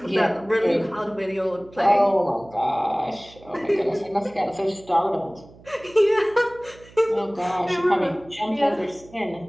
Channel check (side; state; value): right; noise; hum, 23 dB below the sound